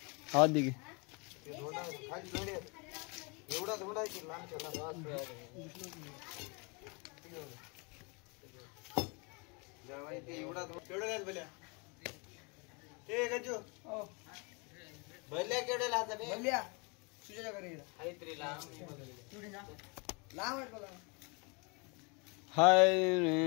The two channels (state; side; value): quieter; right; 31.3 dB